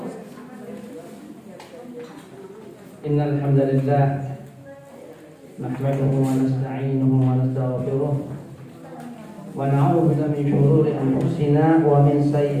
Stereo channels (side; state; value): both; identical; correlation 1.00